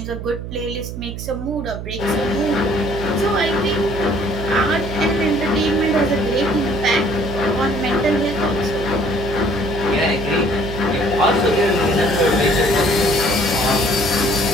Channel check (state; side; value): noise; right; hum, 8 dB below the sound